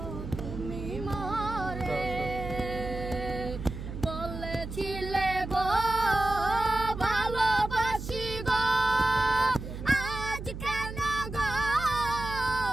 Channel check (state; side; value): noise; right; hum, 8 dB below the sound